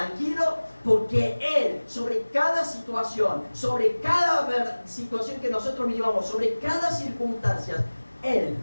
porque Él, sobre cada situación, sobre cada situación que nosotros vivamos, sobre cada circunstancia, Él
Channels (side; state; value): both; inverted; correlation -1.00